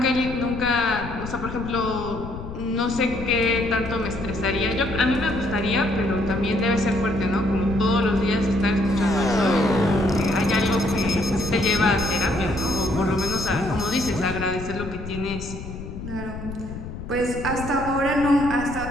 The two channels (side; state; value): left; noise; rumble, 9 dB below the sound